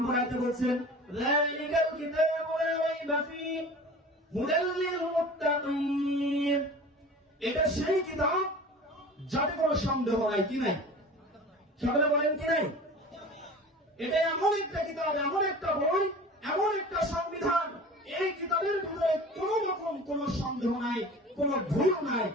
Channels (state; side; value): normal; both; correlation 0.39